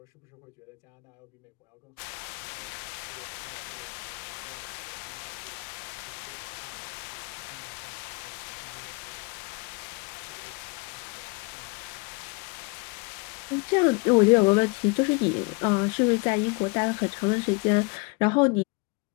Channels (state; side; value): quieter; right; 30.3 dB